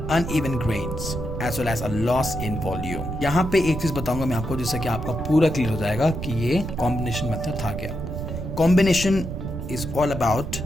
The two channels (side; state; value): right; noise; rumble, 6 dB below the sound